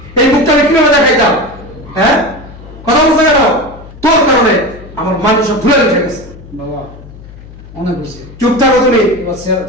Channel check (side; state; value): left; noise; hum, 18 dB below the sound